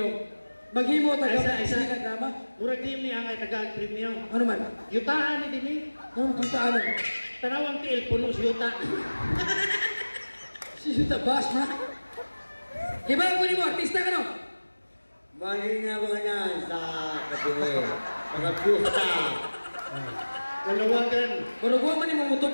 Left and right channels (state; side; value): inverted; both; correlation -1.00